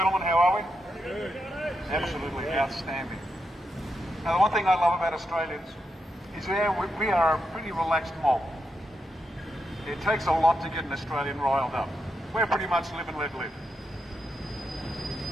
How are we? Absolutely outstanding. Now, the one thing I love about Australians is we are a pretty relaxed mob. It takes a lot to get an Australian riled up. We're pretty much live and let live.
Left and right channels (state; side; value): normal; both; correlation 0.85